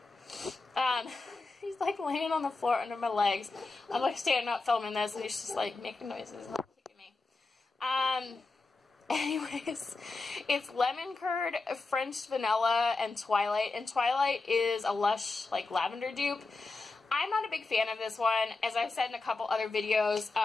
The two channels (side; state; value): right; quieter; 3.6 dB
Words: He's like laying on the floor under my legs. I'm like standing up filming this, and he's just like making noises and like kicking me. Anyways, it's Lemon Curd, French Vanilla, and Twilight. And Twilight is a Lush like lavender dupe. I'm not a big fan of this one. As I've said in a couple other videos,